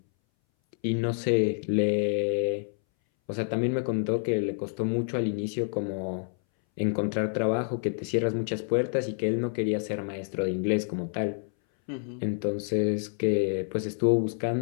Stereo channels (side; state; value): right; silent; 59 dB below the other